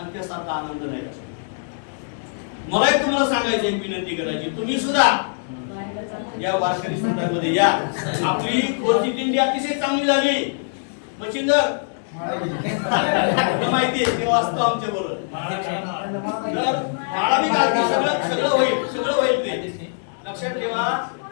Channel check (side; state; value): right; silent; digital silence